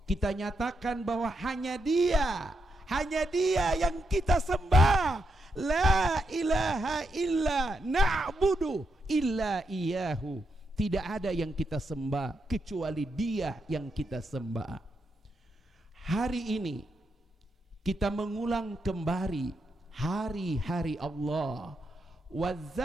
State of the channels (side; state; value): both; normal; correlation 0.82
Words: kita nyatakan bahwa hanya Dia yang kita sembah. La ilaha illa na'budu illa iyahu. Tidak ada yang kita sembah kecuali Dia yang kita sembah. Hari ini kita mengulang kembali hari-hari Allah.